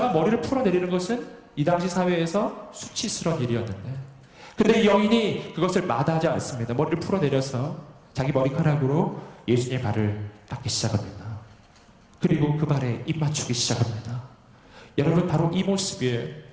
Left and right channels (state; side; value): identical; both; correlation 1.00